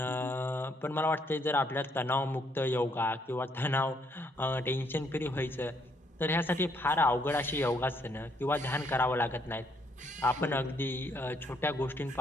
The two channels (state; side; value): normal; both; correlation 0.71